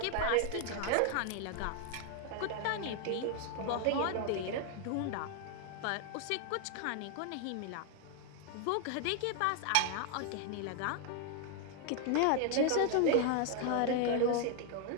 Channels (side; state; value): both; different; correlation 0.00